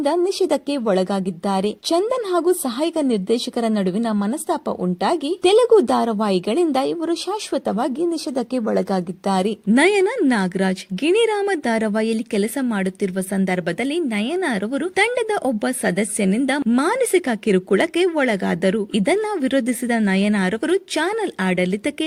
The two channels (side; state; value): both; identical; correlation 1.00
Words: ನಿಷೇಧಕ್ಕೆ ಒಳಗಾಗಿದ್ದಾರೆ. ಚಂದನ್ ಹಾಗೂ ಸಹಾಯಕ ನಿರ್ದೇಶಕರ ನಡುವಿನ ಮನಸ್ತಾಪ ಉಂಟಾಗಿ ತೆಲುಗು ಧಾರಾವಾಹಿಗಳಿಂದ ಇವರು ಶಾಶ್ವತವಾಗಿ ನಿಷೇಧಕ್ಕೆ ಒಳಗಾಗಿದ್ದಾರೆ. ನಯನ ನಾಗರಾಜ್ ಗಿಣಿರಾಮ ಧಾರಾವಾಹಿಯಲ್ಲಿ ಕೆಲಸ ಮಾಡುತ್ತಿರುವ ಸಂದರ್ಭದಲ್ಲಿ ನಯನ ರವರು ತಂಡದ ಒಬ್ಬ ಸದಸ್ಯನಿಂದ ಮಾನಸಿಕ ಕಿರುಕುಳಕ್ಕೆ ಒಳಗಾದರು. ಇದನ್ನ ವಿರೋಧಿಸಿದ ನಯನಾರವರು ಚಾನೆಲ್ ಆಡಳಿತಕ್ಕೆ